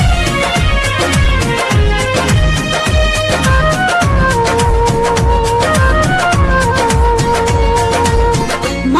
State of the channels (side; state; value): both; identical; correlation 1.00